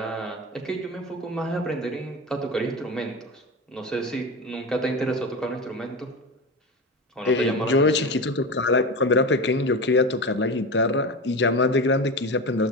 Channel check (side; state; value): both; normal; correlation 0.24